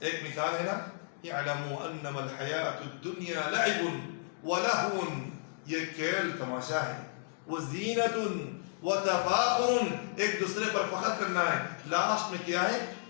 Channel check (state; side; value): silent; right; digital silence